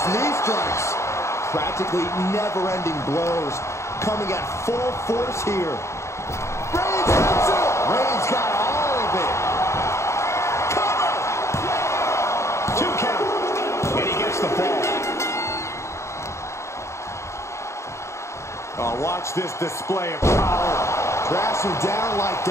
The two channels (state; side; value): late; right; 0.14 ms